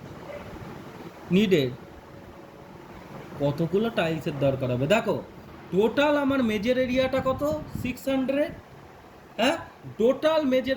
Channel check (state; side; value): identical; both; correlation 1.00